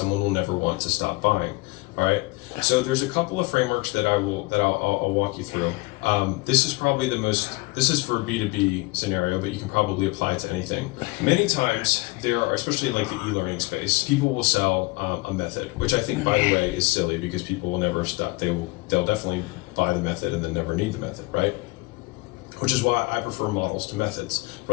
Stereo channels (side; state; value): right; quieter; 24.3 dB